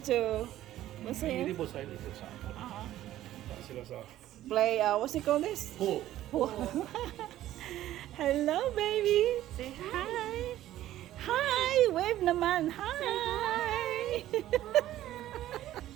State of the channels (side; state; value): left; quieter; 13.6 dB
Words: to. What's Hindi it? po sa dito sa sila sa Play. What's it called? This. pool. Hello, baby. Say hi. Hi. Wave naman. Hi.